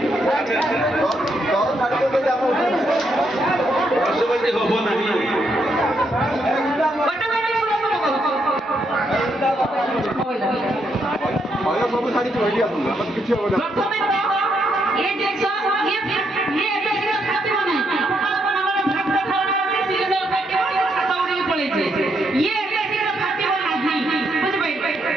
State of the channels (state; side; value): normal; both; correlation 0.77